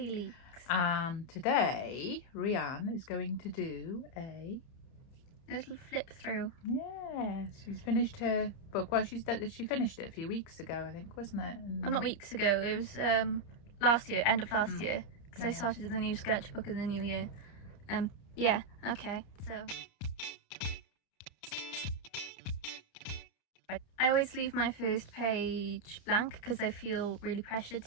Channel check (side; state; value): right; late; 30 ms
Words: Leaks. And today Rhian is going to do a little flip through. Yes, she's finished her book. Well, she finished it a few weeks ago, I think, wasn't it? Well, not weeks ago. It was last year, end of last year, because I started the new sketchbook in the new year. Yeah. Okay. So I always leave my first page blank because I feel really pressured